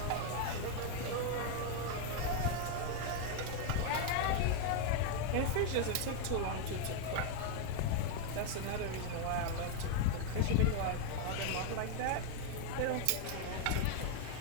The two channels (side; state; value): both; different; correlation 0.01